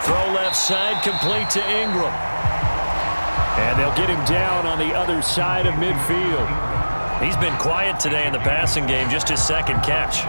Throw left side, complete to Ingram. And they'll get him down on the other side of midfield. He's been quiet today in the passing game, just his 2nd catch.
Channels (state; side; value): inverted; both; correlation -1.00